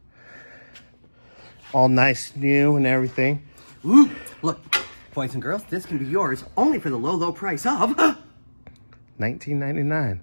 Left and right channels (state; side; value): inverted; both; correlation -1.00